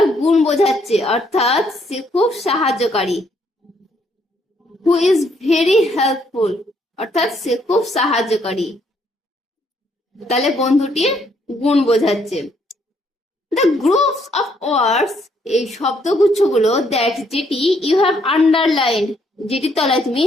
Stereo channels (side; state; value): both; normal; correlation 0.70